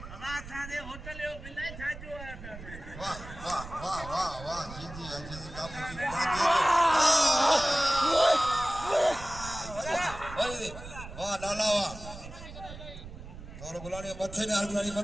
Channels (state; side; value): noise; right; rumble, 13 dB below the sound